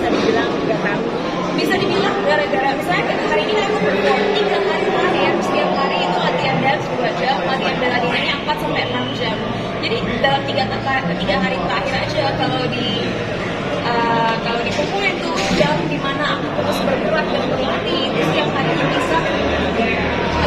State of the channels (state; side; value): identical; both; correlation 1.00